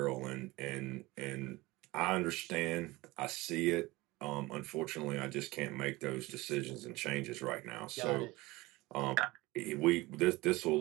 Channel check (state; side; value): quieter; left; 20.9 dB